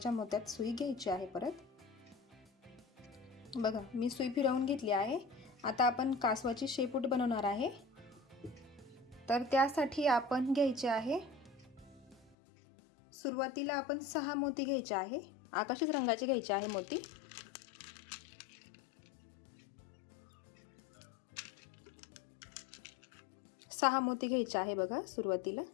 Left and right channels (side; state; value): right; drops out; at 12.4 s